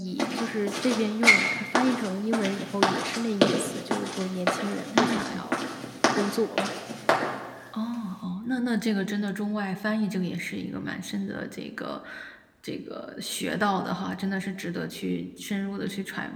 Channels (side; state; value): both; identical; correlation 1.00